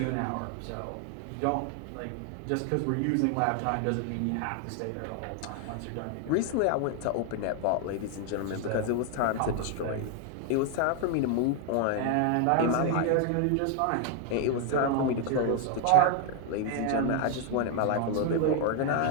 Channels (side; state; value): both; different; correlation 0.01